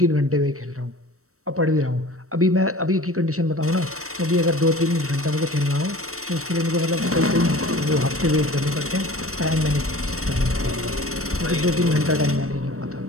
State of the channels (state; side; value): late; left; 0.64 ms